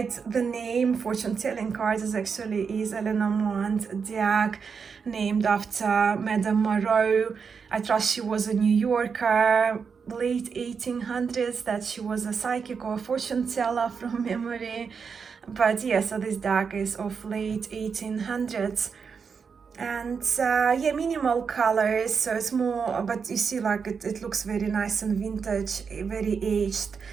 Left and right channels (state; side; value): quieter; left; 5.9 dB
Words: the name, Fortune Telling Cards is a Lenormand deck named after Madame Moreau. I trust she was a New Yorker, late 1800s, that she was a psychic or a fortune teller from memory. But yeah, so this deck is of late 1800s. And yeah, minimal colors, so it's more, but you see, like it looks very nice and vintage, very aged.